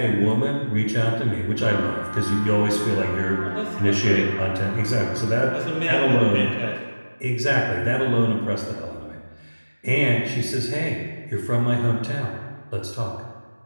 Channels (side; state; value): both; inverted; correlation -1.00